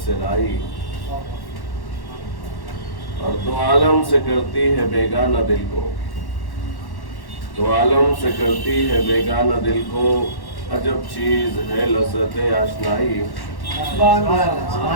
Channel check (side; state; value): right; late; 1.1 ms